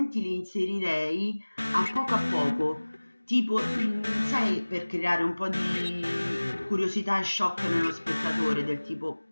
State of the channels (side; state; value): both; inverted; correlation -1.00